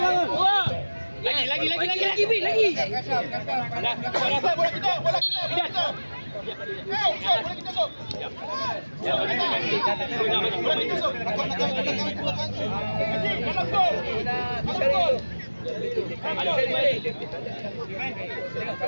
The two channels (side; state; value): both; inverted; correlation -1.00